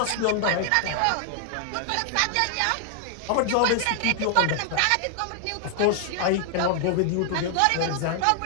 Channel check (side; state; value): both; different; correlation 0.00